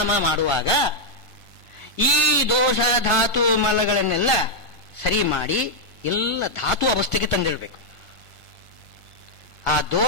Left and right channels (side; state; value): right; late; 1.5 ms